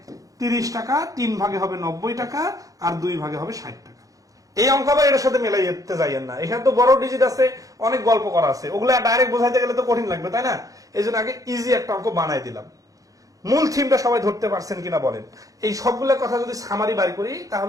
30 টাকা, 3 ভাগে হবে 90 টাকা আর 2 ভাগে হবে 60 টাকা। এই অঙ্ক আবার এটার সাথে মেলাইতে যাইয়েন না, এখানে তো বড় ডিজিট আছে, অনেক গল্প করা আছে, ওগুলো ডাইরেক্ট বোঝাইতে গেলে তো কঠিন লাগবে, তাই না? এই জন্য আগে ইজি একটা অঙ্ক বানাই দিলাম। মূল থিমটা সবাই ধরতে পারছেন কিনা বলেন? এই সবগুলো কথা যদি সামারি বাড়ি করি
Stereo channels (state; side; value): late; left; 0.17 ms